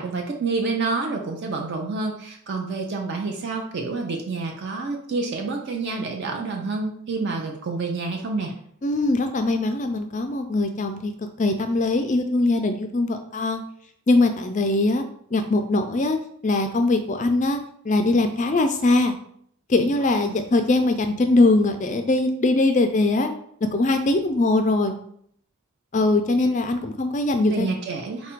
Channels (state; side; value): normal; both; correlation 0.58